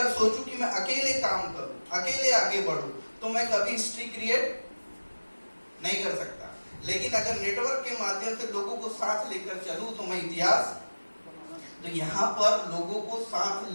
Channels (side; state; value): both; inverted; correlation -1.00